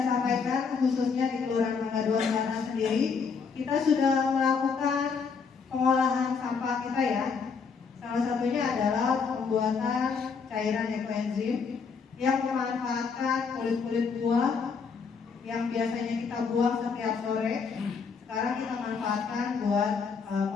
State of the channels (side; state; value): right; quieter; 5.5 dB